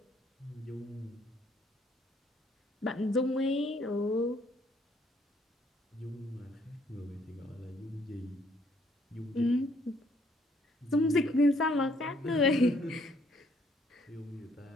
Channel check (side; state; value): both; normal; correlation 0.66